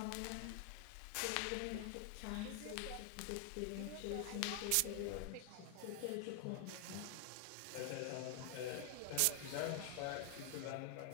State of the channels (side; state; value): both; different; correlation 0.00